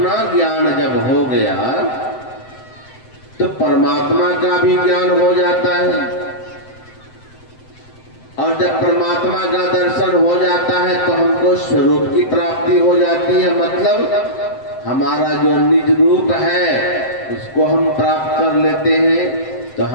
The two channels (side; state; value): right; late; 7.7 ms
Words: ज्ञान जब हो गया तो परमात्मा का भी ज्ञान हो जाता है, और जब परमात्मा का दर्शन हो जाता है तो हमको स्वरूप की प्राप्ति हो जाती है। मतलब हमारा जो निज रूप है उसको हम प्राप्त कर लेते हैं। तो